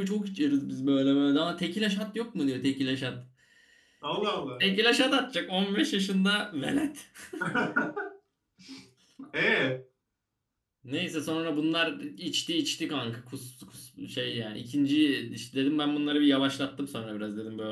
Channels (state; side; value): identical; both; correlation 1.00